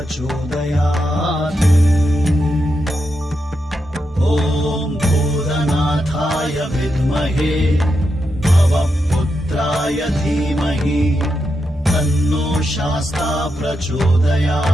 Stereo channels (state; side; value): normal; both; correlation 0.85